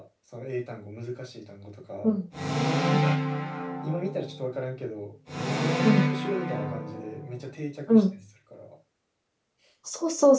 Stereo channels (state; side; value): identical; both; correlation 1.00